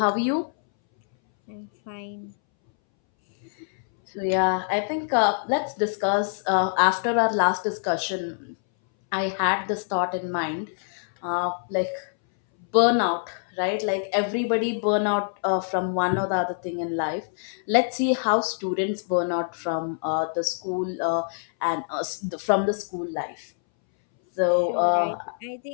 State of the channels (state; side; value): silent; right; 61 dB below the other